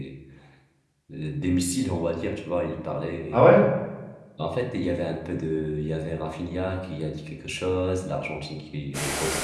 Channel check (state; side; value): identical; both; correlation 1.00